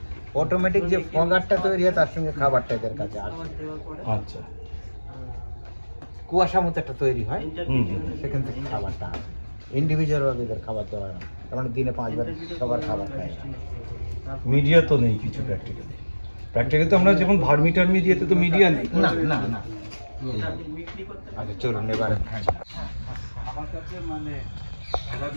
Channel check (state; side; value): inverted; both; correlation -1.00